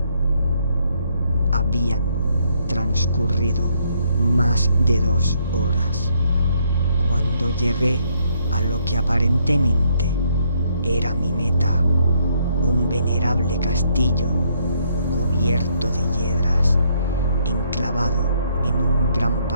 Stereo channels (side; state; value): both; inverted; correlation -0.71